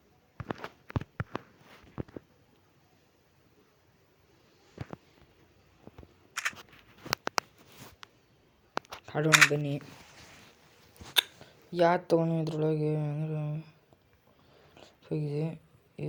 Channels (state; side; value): identical; both; correlation 1.00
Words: ಆಡೋಣ ಬನ್ನಿ. ಯಾವ್ದು ತೊಗೊಂಡು ಇದ್ರೊಳಗೆ ಹೋಗಿದೆ